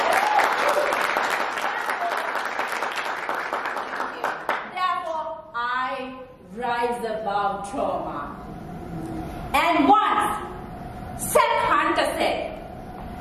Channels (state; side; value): identical; both; correlation 1.00